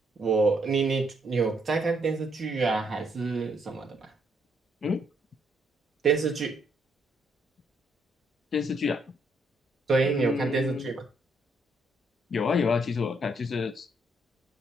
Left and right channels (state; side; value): normal; both; correlation 0.72